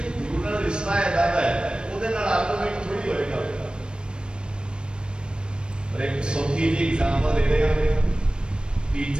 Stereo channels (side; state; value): left; late; 0.053 ms